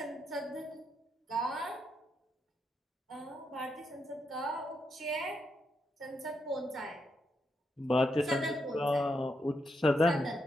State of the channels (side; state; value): both; normal; correlation 0.81